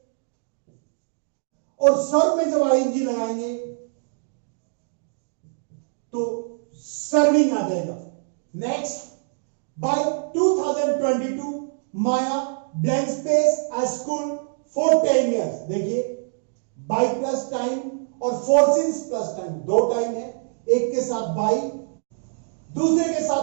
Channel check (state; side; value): silent; left; digital silence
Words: और सर्व में जब आईएनजी लगाएंगे तो सर्विंग आ जाएगा। Next, by 2022 Maya blank space at school for 10 years। देखिए बाय प्लस टाइम और फोर सिंस प्लस टाइम, दो टाइम है, एक के साथ बाय दूसरे के